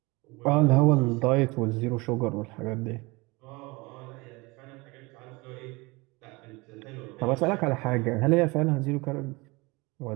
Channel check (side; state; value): left; quieter; 24.7 dB